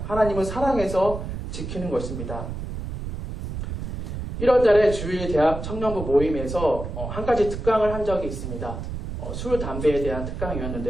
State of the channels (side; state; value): right; noise; rumble, 6 dB below the sound